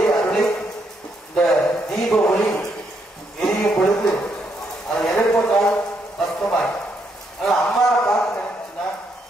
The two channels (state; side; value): normal; both; correlation 0.76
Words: அருளை இந்த தீப ஒளி எரியும் பொழுது அது எதை போட்டாலும் கஷ்டமாய். ஆனா அம்மாவை பார்த்து நினைச்சுன்னா